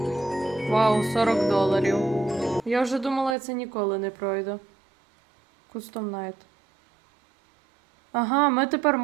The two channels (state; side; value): drops out; left; at 3.4 s